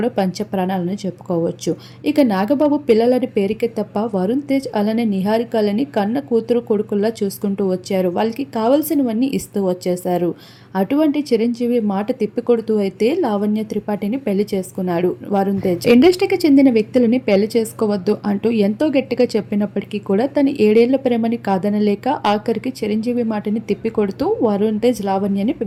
పంచ ప్రాణాలను చెప్పుకోవచ్చు. ఇక నాగబాబు పిల్లలని పేరుకే తప్ప వరుణ్ తేజ్ అలానే నిహారికలని కన్న కూతురు కొడుకుల్లా చూసుకుంటూ వచ్చారు. వాళ్ళకి కావాల్సినవన్నీ ఇస్తూ వచ్చేశారు. అటువంటి చిరంజీవి మాట తిప్పికొడుతూ అయితే లావణ్య త్రిపాఠిని పెళ్లి చేసుకున్నాడు వరుణ్ తేజ్. ఇండస్ట్రీకి చెందిన వ్యక్తులని పెళ్లి చేసుకోవద్దు అంటూ ఎంతో గట్టిగా చెప్పినప్పటికీ కూడా తన 7 ఏళ్ల ప్రేమని కాదనలేక ఆఖరికి చిరంజీవి మాటని తిప్పికొడుతూ వరుణ్ తేజ్ లావణ్యని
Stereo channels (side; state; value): both; identical; correlation 1.00